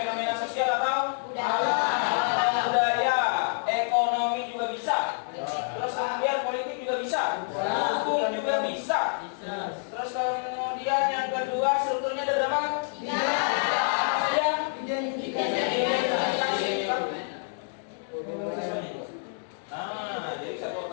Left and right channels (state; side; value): silent; right; digital silence